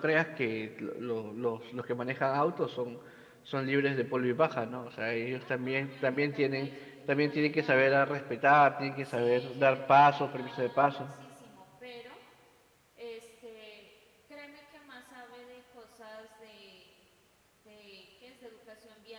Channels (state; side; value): identical; both; correlation 1.00